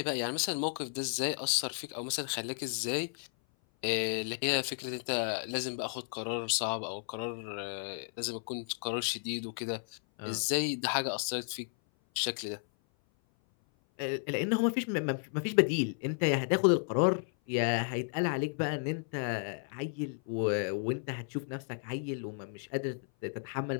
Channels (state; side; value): silent; right; 56 dB below the other